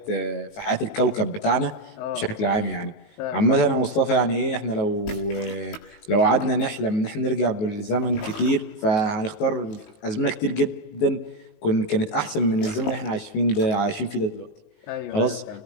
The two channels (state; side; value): late; right; 18 ms